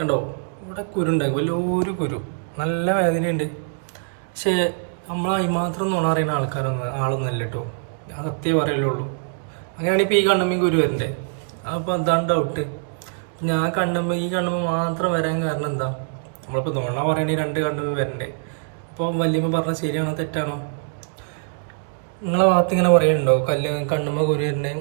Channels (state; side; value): silent; left; digital silence